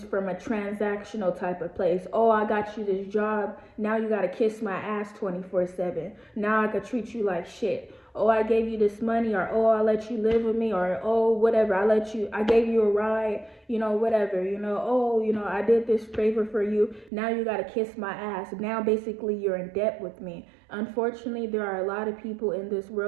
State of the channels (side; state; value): left; drops out; at 17.1 s